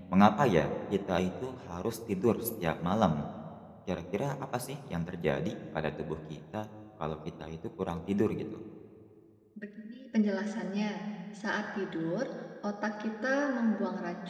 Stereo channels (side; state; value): both; identical; correlation 1.00